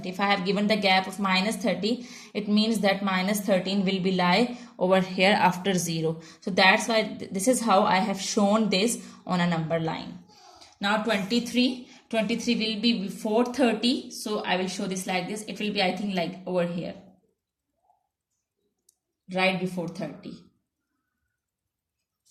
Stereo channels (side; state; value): both; identical; correlation 1.00